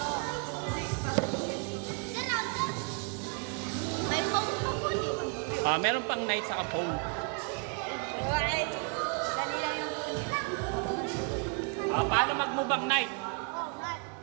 Meron pang night sa phone. Paano mag-move night?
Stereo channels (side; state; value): left; quieter; 38.1 dB